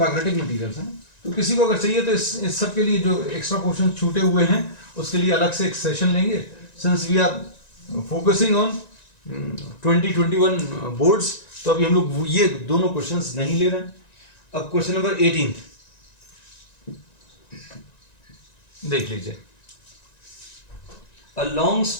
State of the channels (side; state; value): right; late; 1.9 ms